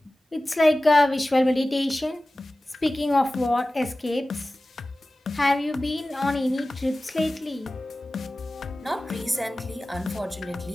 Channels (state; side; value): normal; both; correlation 0.96